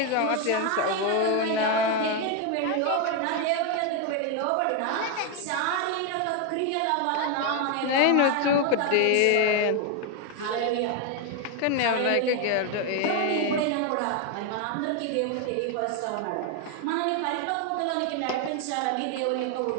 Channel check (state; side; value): different; both; correlation 0.01